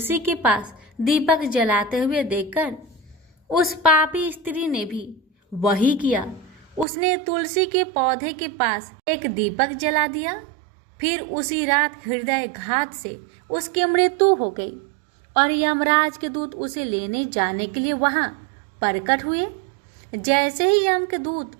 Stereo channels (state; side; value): drops out; left; at 6.9 s